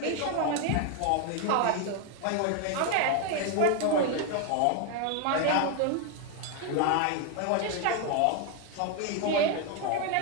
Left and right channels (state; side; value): different; both; correlation 0.01